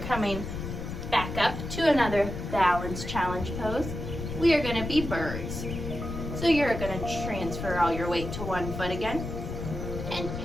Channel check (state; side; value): noise; left; rumble, 6 dB below the sound